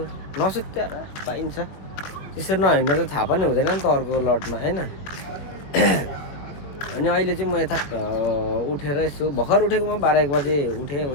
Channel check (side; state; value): right; late; 21 ms